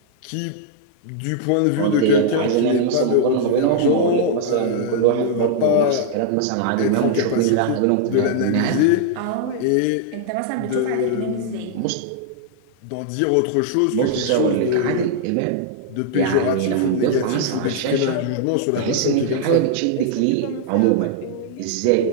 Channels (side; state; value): both; different; correlation -0.01